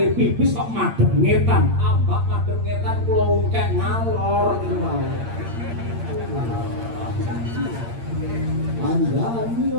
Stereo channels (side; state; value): left; late; 8.7 ms